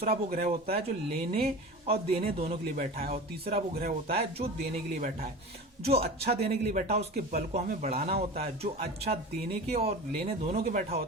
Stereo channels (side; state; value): both; normal; correlation 0.33